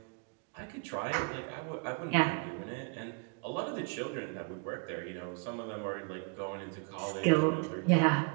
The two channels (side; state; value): left; quieter; 35.7 dB